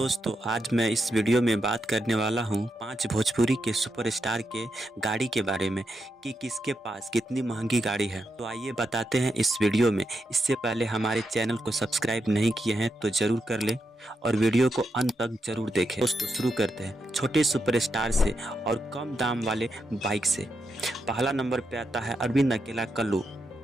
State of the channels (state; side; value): normal; both; correlation 0.84